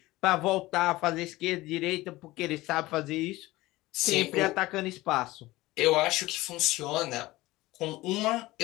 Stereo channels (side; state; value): right; quieter; 18.7 dB